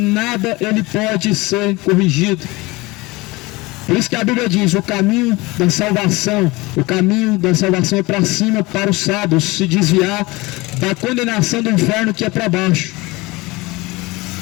ele pode ser corrigido. Por isso que a Bíblia diz: o caminho da salvação é para cima, para os sábios, se desviar da condenação do inferno que é para baixo.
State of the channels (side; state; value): right; quieter; 22.5 dB